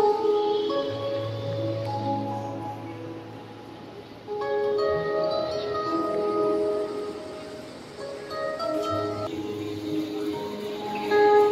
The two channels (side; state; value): both; identical; correlation 1.00